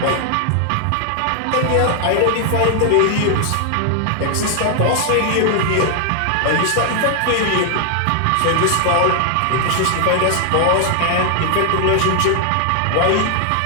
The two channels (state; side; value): different; both; correlation 0.00